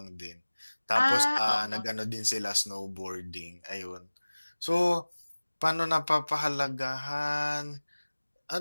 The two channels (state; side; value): inverted; both; correlation -1.00